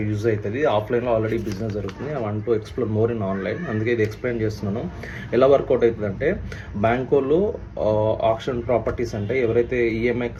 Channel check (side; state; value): both; identical; correlation 1.00